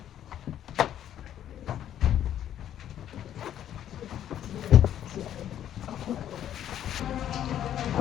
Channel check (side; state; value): right; quieter; 10.8 dB